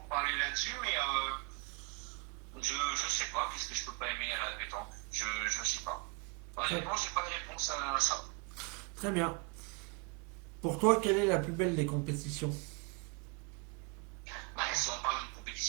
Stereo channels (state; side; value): quieter; left; 32.4 dB